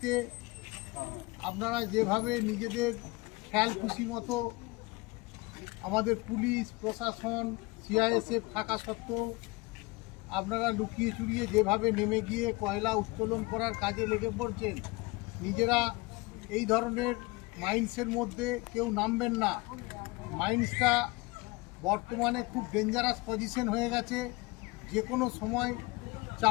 আপনারা যেভাবে নিজেদের খেয়াল খুশি মতো আমাদের পুলিশ প্রশাসন সিআইএসএফ থাকা সত্ত্বেও আপনারা লুকিয়ে চুরিয়ে যেভাবে নেমে গিয়ে কয়লা উত্তোলন করার কাজে লেগে পড়ছেন, নিজেরা এই ধরনের মাইন্সের মধ্যে কেউ নামবেন না। মাইন্সটা বর্তমানে খুব ডেঞ্জারাস পজিশন হয়ে গেছে, যে কোনো সময়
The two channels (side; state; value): right; quieter; 24.2 dB